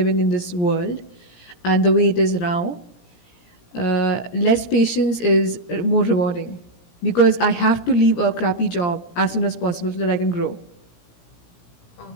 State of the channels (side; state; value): right; late; 17 ms